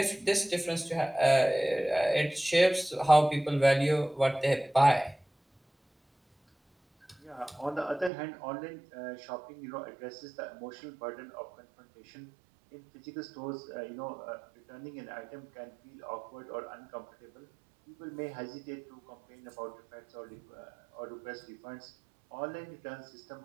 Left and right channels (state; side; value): drops out; left; at 8.1 s